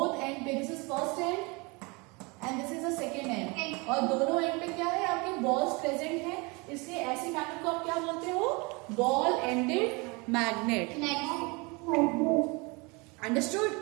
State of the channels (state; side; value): quieter; left; 27.9 dB